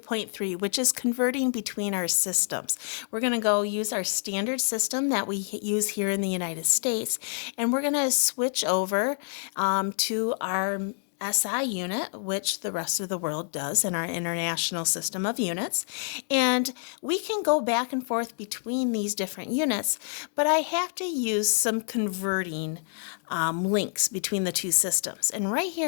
which is converting between our systems. We're going to go use our standard system that we use here in the United States, and we're going to switch over to our SI unit, which the rest of the world does in our international system of units. And we can go back and forth between these different units, but I have to use some converting links between the two systems. And right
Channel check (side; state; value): right; silent; 60 dB below the other